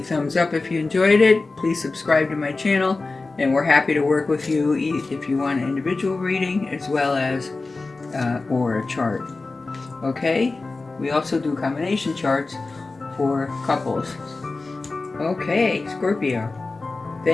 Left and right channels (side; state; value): right; quieter; 3.6 dB